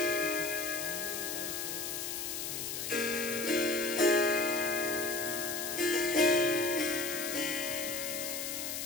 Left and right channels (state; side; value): noise; left; hiss, 4 dB below the sound